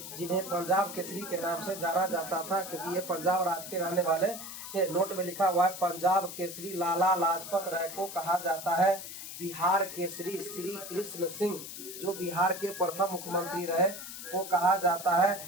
जिन्हें पंजाब केसरी के नाम से जाना जाता था, क्योंकि ये पंजाब राज्य के रहने वाले थे। नोट में लिखा हुआ है पंजाब केसरी लाला लाजपत राय को कहा जाता है। बिहार केसरी श्री कृष्ण सिंह, जो बिहार के प्रथम मुख्यमंत्री रहे, को कहा जाता है।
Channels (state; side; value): noise; left; hiss, 10 dB below the sound